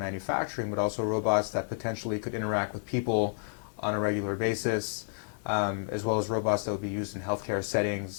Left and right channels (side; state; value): right; silent; 57 dB below the other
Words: but also robots that potentially could interact with people on a regular basis, as well as robots that would be used in healthcare